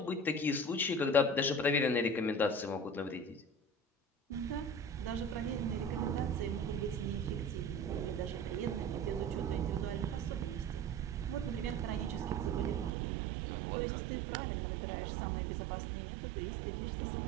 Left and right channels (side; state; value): left; drops out; at 12.9 s